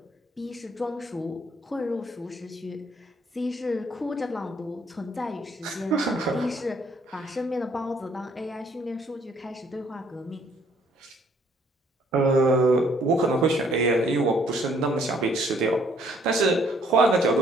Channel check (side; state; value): both; normal; correlation 0.64